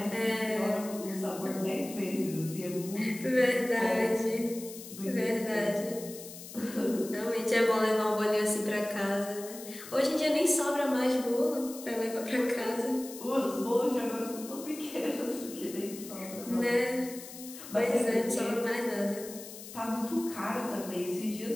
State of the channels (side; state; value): left; noise; hiss, 14 dB below the sound